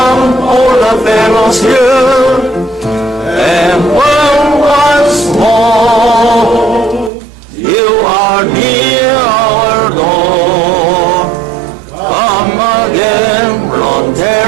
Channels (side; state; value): left; drops out; at 7.1 s